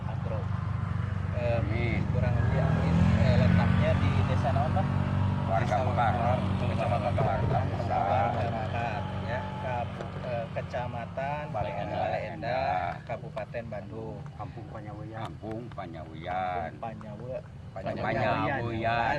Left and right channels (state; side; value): identical; both; correlation 1.00